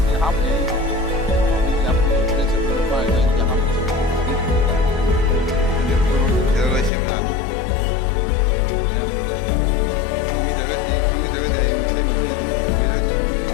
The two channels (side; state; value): right; drops out; at 6.9 s